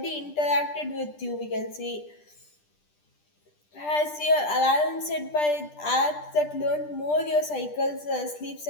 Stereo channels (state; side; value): late; right; 10 ms